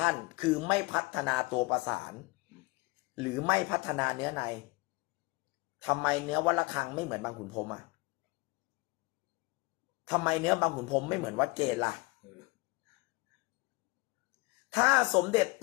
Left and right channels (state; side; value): quieter; right; 24.1 dB